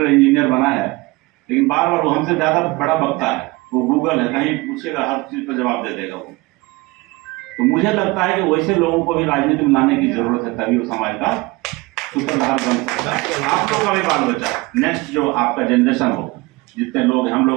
इंजीनियर बना है, लेकिन बार बार वो हमसे ज्यादा बड़ा बकता है। वो गूगल है, कहीं पूछेगा हर चीज पर जवाब दे देगा वो। तो मुझे लगता है कि वैसे लोगों को भी राजनीति में लाने की जरूरत है, तभी वो समाज का सूत्रधार बन सकता है। आप लोग का भी बाल बच्चा, नेक्स्ट जो आपका जनरेशन हो, जितने लोग, हम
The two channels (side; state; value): left; quieter; 23.2 dB